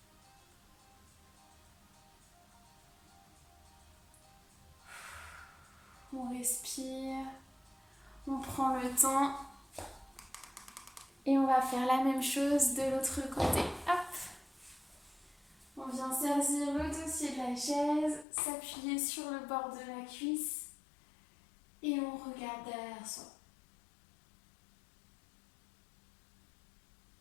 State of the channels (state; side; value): drops out; right; at 18.2 s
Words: On respire. On prend le temps. Et on va faire la même chose de l'autre côté. Hop. On vient saisir le dossier de la chaise, s'appuyer sur le bord de la cuisse. Et on regarde derrière soi.